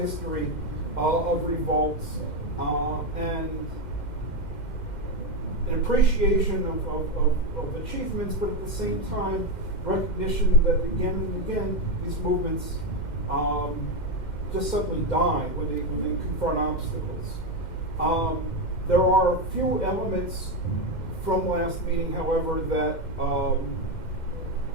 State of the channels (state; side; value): late; right; 2.1 ms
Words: of revolts and an appreciation of achievements, but at the same time, recognition that again and again, these movements just suddenly die when they confront obstacles. There are a few elements from last meeting, however, that